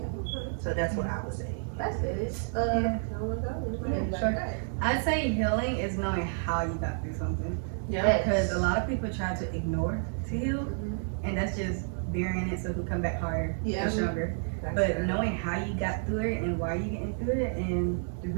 So that's what I would say. That's it. Sure. I'd say healing is knowing how you got through something. Yeah. Because a lot of people try to ignore to heal, and that's just burying it so it can come back harder and stronger. But knowing how you got through it and why you getting through it and the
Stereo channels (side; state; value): left; silent; digital silence